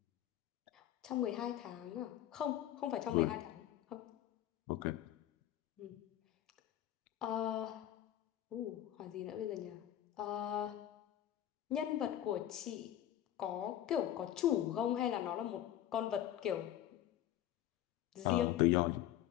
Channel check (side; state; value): right; quieter; 12.2 dB